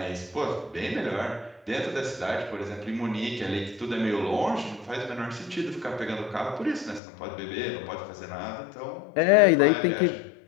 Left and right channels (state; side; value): drops out; right; at 7.0 s